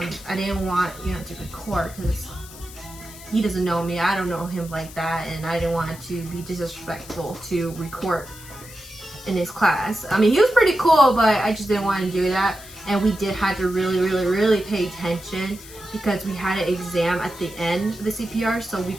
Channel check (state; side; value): noise; left; hiss, 17 dB below the sound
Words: I didn't want to record because he doesn't know me. I don't know him like that, and I didn't want to be disrespectful to record in his class. I mean, he was pretty cool, but I just didn't want to do that. And we did have to really pay attention because we had an exam at the end of the CPR, so we